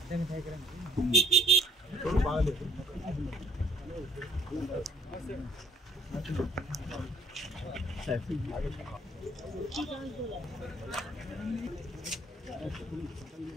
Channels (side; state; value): both; normal; correlation 0.59